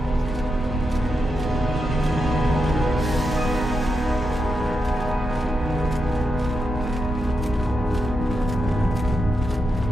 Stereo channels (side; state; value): both; normal; correlation 0.85